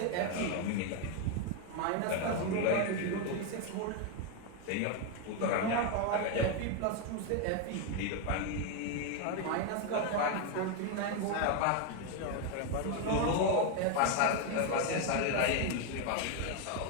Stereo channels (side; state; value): both; different; correlation 0.01